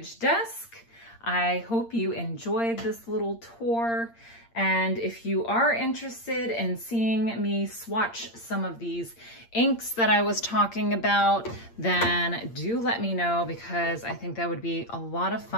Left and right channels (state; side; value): late; right; 8.7 ms